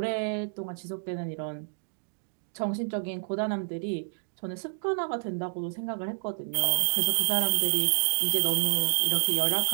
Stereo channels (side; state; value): left; silent; digital silence